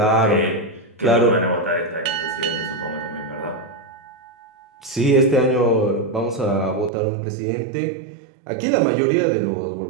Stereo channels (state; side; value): drops out; left; at 6.9 s